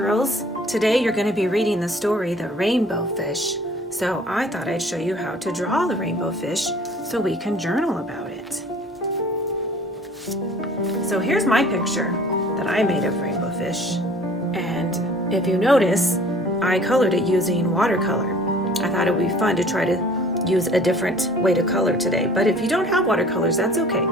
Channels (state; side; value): normal; both; correlation 0.50